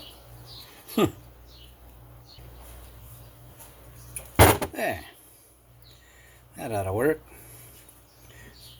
There. That ought to work.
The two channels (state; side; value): identical; both; correlation 1.00